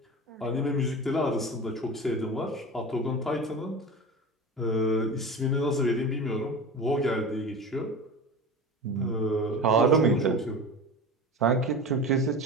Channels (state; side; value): normal; both; correlation 0.31